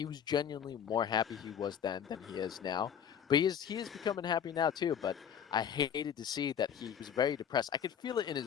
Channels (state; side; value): quieter; right; 8.4 dB